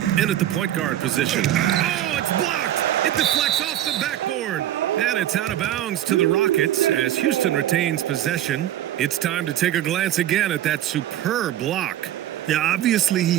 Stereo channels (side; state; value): left; quieter; 12.4 dB